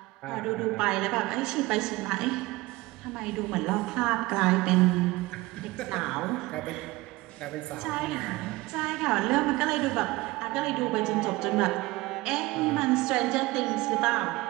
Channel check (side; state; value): left; quieter; 20.5 dB